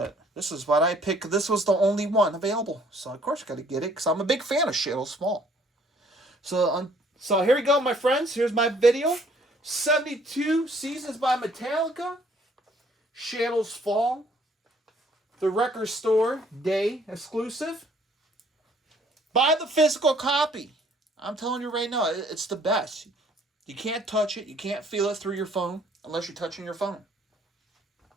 this is what I picked. This was the only one available, so of course I got to get it because I'm a big fan of Shadows Fall. So here we go, my friends. Here's my video. 72 Seasons by Metallica. Shadows Fall. The Record Store Day exclusive. Buy the physical copy. I'm telling you right now, it's the best. You can't touch it. You can't feel it through your phone unless you're touching your phone.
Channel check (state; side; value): normal; both; correlation 0.61